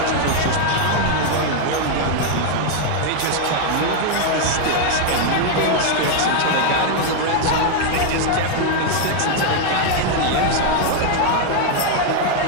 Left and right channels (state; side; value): different; both; correlation 0.00